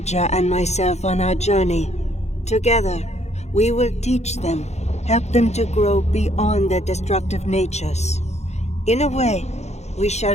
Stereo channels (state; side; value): late; right; 0.32 ms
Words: and myself on our journey. Together, we will teach them, help them to grow beyond their destructive natures. In a way, we